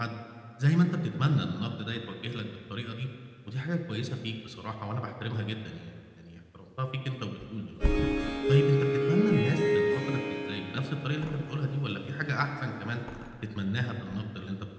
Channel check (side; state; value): both; identical; correlation 1.00